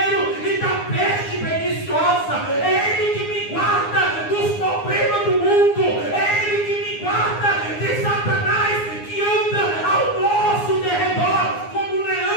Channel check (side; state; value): right; late; 9.7 ms